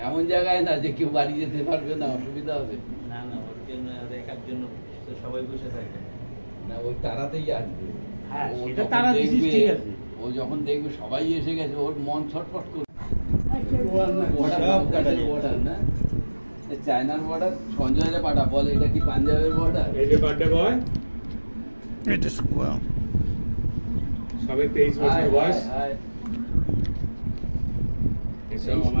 এমন জায়গায় না যে কেউ বাড়ি যেতে পারবে না, অসুবিধা হবে। না না, ওর জন্য দেখার জন্য তো সবাই বসে থাকে না, ওই তারাতেই আসবে। হ্যাঁ, সেটা তারা দিছিস, ঠিক আছে। ও যখন দেখবে সবাই এসে গেছে, ওর মন ছটফট করবে। চায়নার বর্ডার, সঞ্জয়ের পাঠা বলে এটা কি পাঞ্জাবের বর্ডার? এই যে বার্থডে বয়, এটা সবে 23 বছর বয়স, এসব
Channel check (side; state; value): both; inverted; correlation -1.00